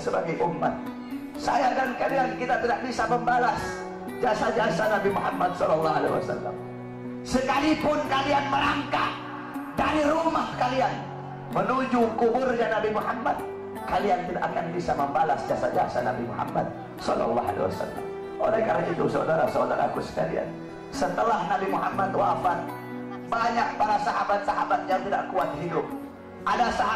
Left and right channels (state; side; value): identical; both; correlation 1.00